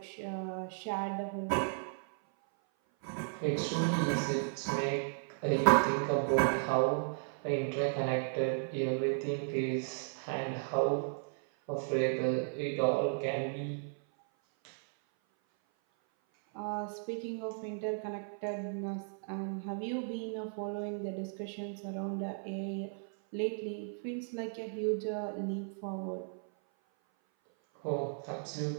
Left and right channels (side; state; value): left; silent; 54 dB below the other